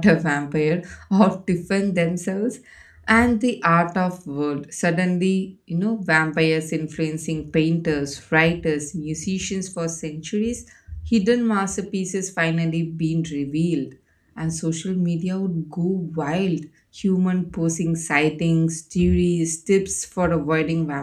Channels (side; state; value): both; identical; correlation 1.00